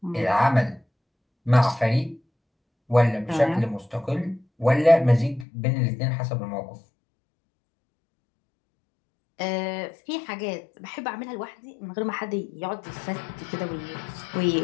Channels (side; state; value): right; drops out; at 5.5 s